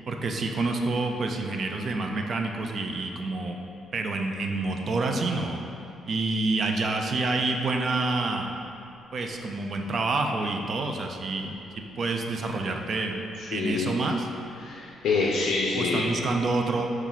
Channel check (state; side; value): noise; left; rumble, 29 dB below the sound